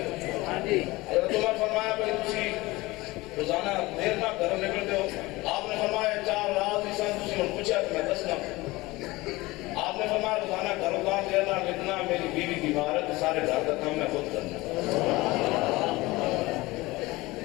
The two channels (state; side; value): quieter; right; 20.9 dB